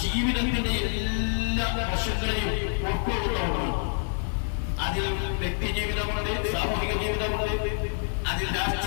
ജീവിതത്തിന്റെ എല്ലാ വശങ്ങളെയും ഉൾക്കൊള്ളുന്നതാണ്. അതിൽ വ്യക്തി ജീവിതമുണ്ട്, സാമൂഹിക ജീവിതമുണ്ട്, അതിൽ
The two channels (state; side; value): silent; right; 60 dB below the other